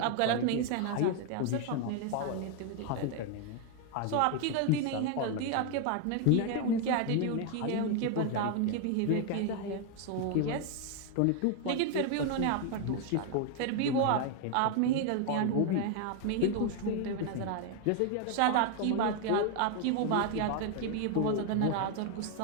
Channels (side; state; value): both; different; correlation 0.00